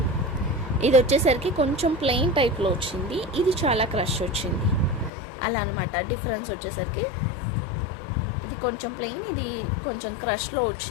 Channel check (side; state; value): right; drops out; at 5.1 s